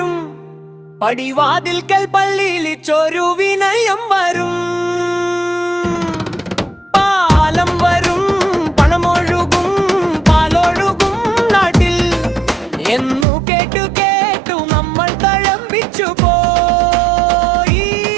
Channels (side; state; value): left; drops out; at 13.2 s